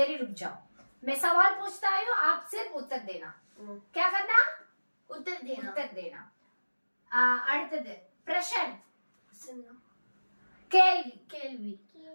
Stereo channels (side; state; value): both; inverted; correlation -1.00